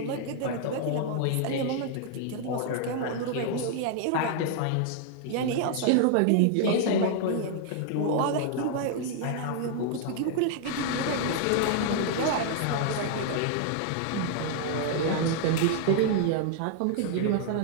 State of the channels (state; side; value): different; both; correlation 0.00